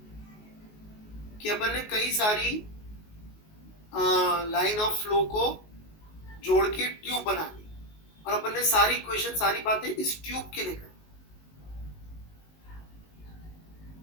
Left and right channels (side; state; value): right; late; 19 ms